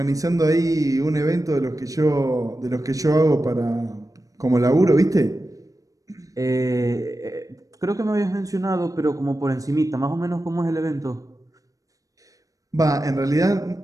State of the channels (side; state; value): left; late; 0.16 ms